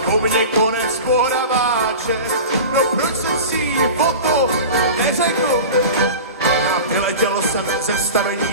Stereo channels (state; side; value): inverted; both; correlation -0.33